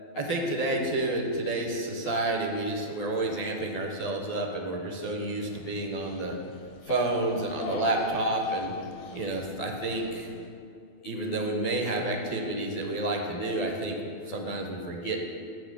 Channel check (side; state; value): right; late; 12 ms